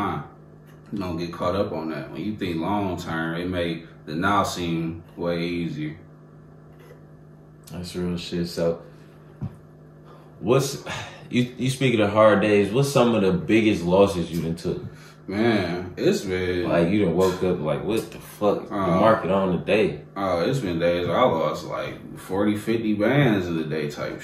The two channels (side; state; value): both; identical; correlation 1.00